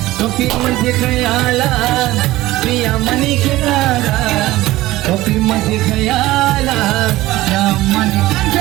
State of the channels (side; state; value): left; quieter; 17.3 dB